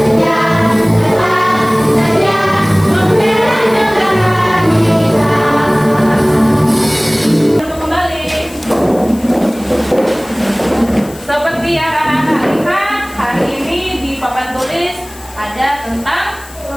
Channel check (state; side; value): noise; left; hiss, 20 dB below the sound